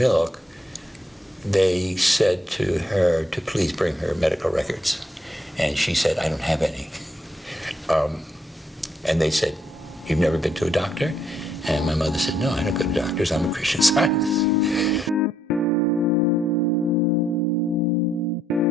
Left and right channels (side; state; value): both; normal; correlation 0.74